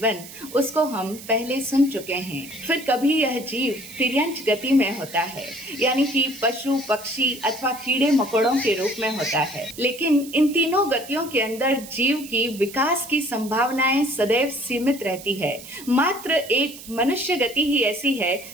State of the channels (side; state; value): right; noise; hiss, 15 dB below the sound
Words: उसको हम पहले सुन चुके हैं। फिर कभी यह जीव तिर्यंच गति में होता है, यानी कि पशु पक्षी अथवा कीड़े मकोड़ों के रूप में होता है। लेकिन इन तीनों गतियों के अंदर जीव की विकास की संभावनाएं सदैव सीमित रहती है। मात्र एक मनुष्य गति ही ऐसी है